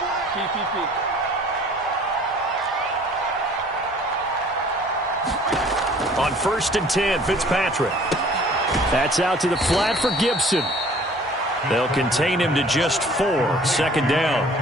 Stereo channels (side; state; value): both; normal; correlation 0.52